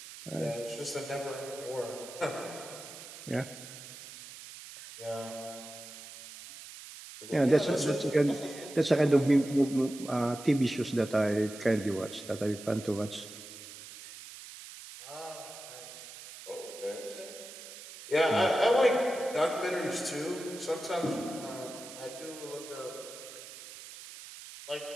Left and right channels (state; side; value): noise; right; hiss, 14 dB below the sound